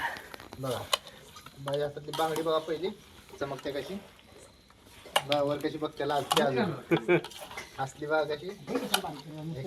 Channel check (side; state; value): both; identical; correlation 1.00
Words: बघा बाई हातातली बांगडी बघा पहिली चमकते कशी वर कशी बघते लाजते अजून असली बघा कशी.